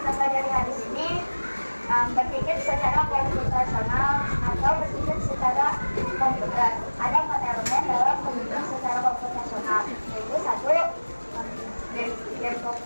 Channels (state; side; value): inverted; both; correlation -1.00